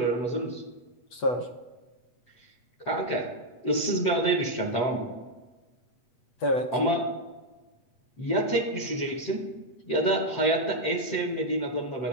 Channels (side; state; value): right; late; 8.2 ms